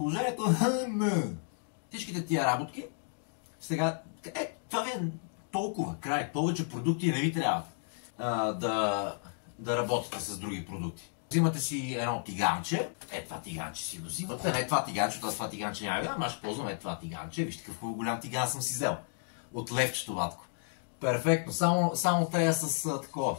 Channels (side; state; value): right; silent; 56 dB below the other